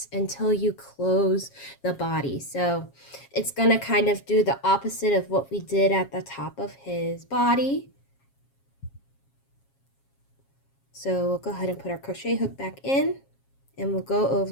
until you close the body. So it's going to kind of do the opposite of what we did at the top of his body. So we'll go ahead and put our crochet hook back in, and we'll go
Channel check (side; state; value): right; late; 7.3 ms